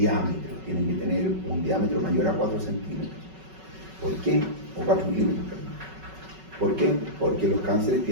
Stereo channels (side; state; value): left; late; 5.3 ms